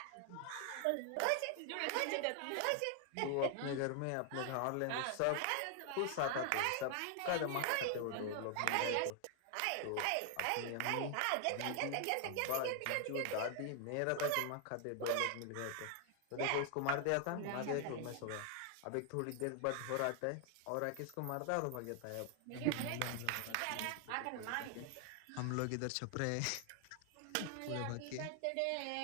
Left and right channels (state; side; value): different; both; correlation 0.00